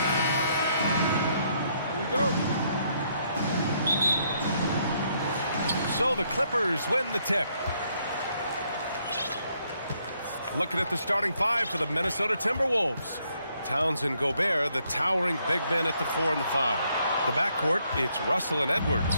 we go. So the Clippers win the tip. Looking at the starting five for the Minnesota Timberwolves. Towns and Gobert, the towering big men at the 4 and the 5. The backcourt, it's Russell and Edwards.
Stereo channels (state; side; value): inverted; both; correlation -0.72